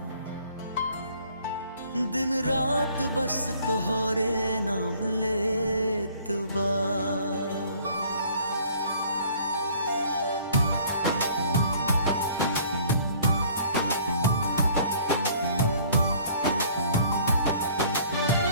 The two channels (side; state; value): both; inverted; correlation -0.56